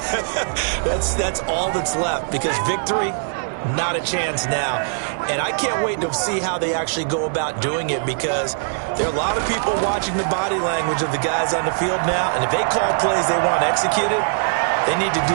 That's all that's left, because victory, not a chance now. And I can't wait to see how they actually go about doing it, because there are a lot of people watching the body language of the guys on the field now, and if they call plays they want executed, they need to do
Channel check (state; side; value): silent; left; digital silence